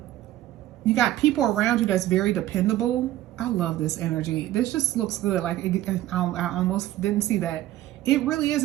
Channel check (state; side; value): quieter; left; 14.4 dB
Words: You got people around you that's very dependable. I love this energy. This just looks good. Like, I almost didn't see that. It really is